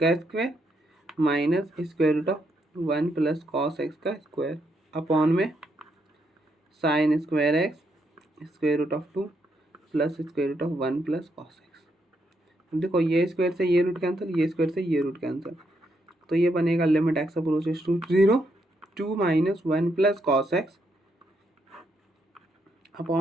square minus square root of 1 plus cos x का स्क्वायर अपॉन में sine square x square root of 2 plus square root of 1 plus cos x. देखो ये square से ये रूट कैंसिल, ये स्क्वायर से ये रूट कैंसिल, तो ये बनेगा limit x approaches to 0 2 minus 1 plus cos x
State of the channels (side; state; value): both; normal; correlation 0.78